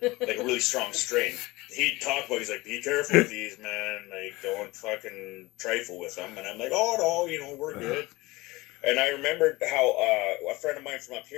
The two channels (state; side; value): quieter; right; 21.2 dB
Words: a really strong strain. He'd talk about, he's like, be careful with these, man. Like, don't fucking trifle with them. And I'm like, oh, no, we're good. And I remembered how a friend of mine from up